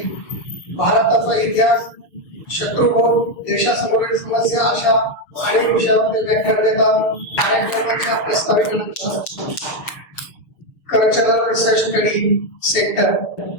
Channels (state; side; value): late; right; 6.7 ms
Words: भारताचा इतिहास, शत्रुभोग, देशासमोरील समस्या अशा अनेक विषयावर ते व्याख्यान देतात. कार्यक्रमाच्या प्रस्तावित कल्चरल रिसर्च स्टडी सेंटर